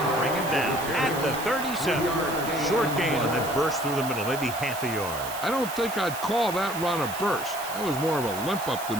bring him down at the 37. Short gain and then burst through the middle, maybe half a yard. I don't think I'd call that run a burst. That was more of a limp up the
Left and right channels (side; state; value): right; noise; hiss, 11 dB below the sound